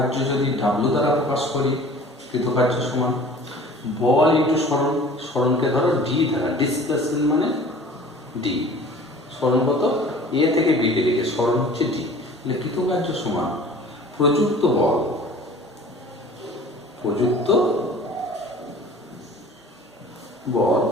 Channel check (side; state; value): both; normal; correlation 0.45